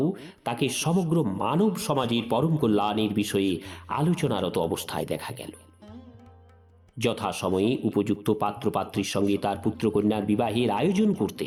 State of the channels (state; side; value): identical; both; correlation 1.00